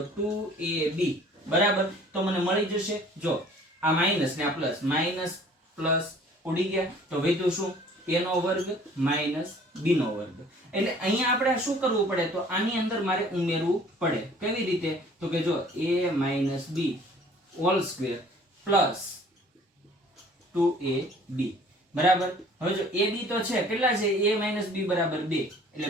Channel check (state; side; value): normal; both; correlation 0.52